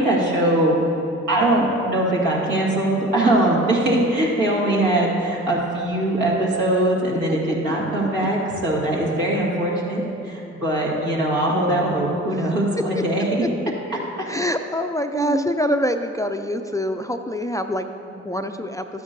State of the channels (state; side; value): normal; both; correlation 0.41